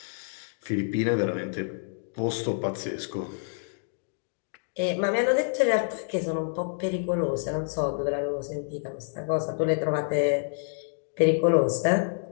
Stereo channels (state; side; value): silent; right; digital silence